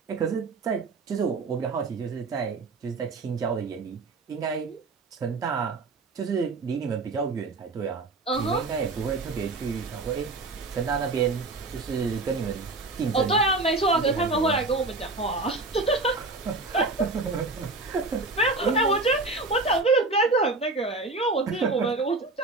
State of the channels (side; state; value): left; quieter; 3.4 dB